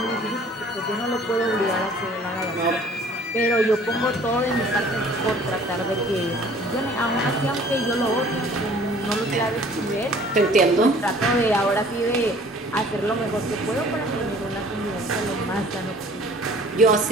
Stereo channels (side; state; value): both; normal; correlation 0.52